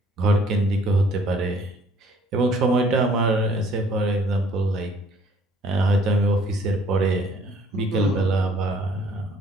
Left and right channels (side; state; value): both; normal; correlation 0.59